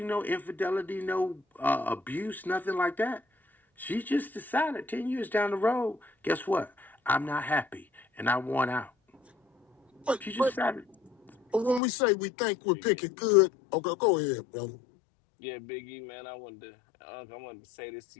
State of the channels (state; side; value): drops out; right; at 11.8 s